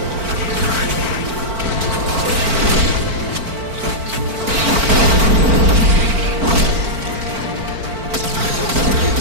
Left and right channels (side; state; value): left; late; 4.4 ms